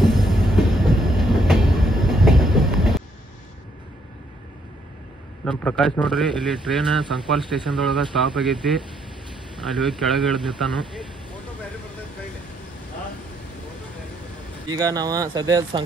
ನಮ್ಮ ಪ್ರಕಾಶ್ ನೋಡ್ರಿ, ಇಲ್ಲಿ ಟ್ರೈನ್ ಸಂಕ್ವಾಲ್ ಸ್ಟೇಷನ್ದೊಳಗೆ ಸ್ಟಾಪ್ ಆಗೈತಿ. ಅಲ್ಲಿ ಹೋಗಿ ಕೆಳಗೆ ಇಳಿದು ನಿಂತಾನು. ಈಗ ನಾವು ಸದ್ಯ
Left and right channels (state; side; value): normal; both; correlation 0.71